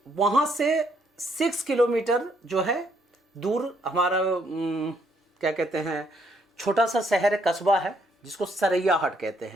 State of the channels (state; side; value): normal; both; correlation 0.71